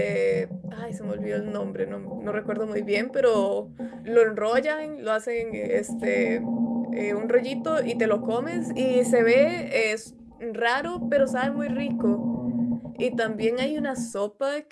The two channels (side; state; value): both; identical; correlation 1.00